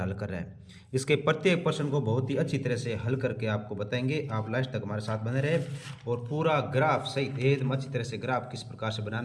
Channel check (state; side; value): identical; both; correlation 1.00